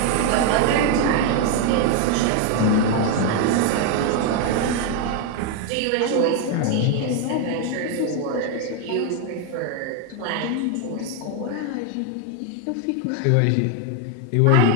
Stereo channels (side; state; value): both; different; correlation 0.01